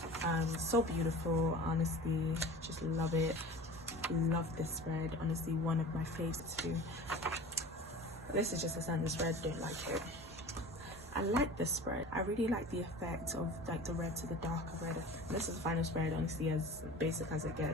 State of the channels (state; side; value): normal; both; correlation 0.38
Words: So beautiful, honestly, just love it. Love this spread, honestly, one of my favorites too. This is just a standard spread, don't like it. I like this spread. I really like the effect of like the red to the darker red. This is the final spread, honestly, as basic as it